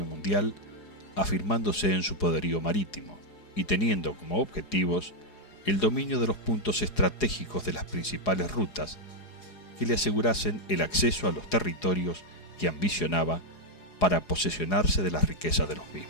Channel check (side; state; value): right; late; 4.8 ms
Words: mundial, afirmándose en su poderío marítimo y teniendo como objetivos el dominio de los puntos estratégicos de las principales rutas que le asegurasen el acceso a los territorios que ambicionaba para posesionarse de las riquezas de los